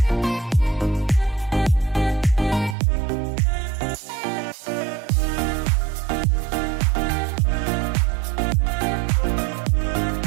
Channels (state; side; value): drops out; left; at 2.8 s